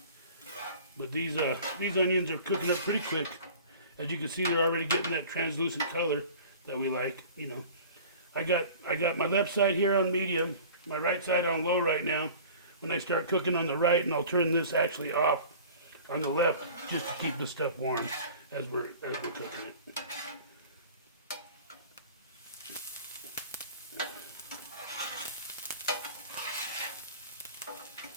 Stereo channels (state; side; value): inverted; both; correlation -0.43